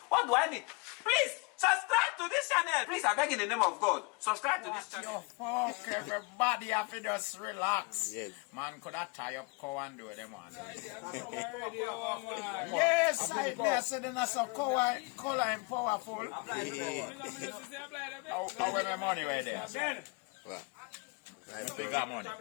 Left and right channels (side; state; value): right; quieter; 30.6 dB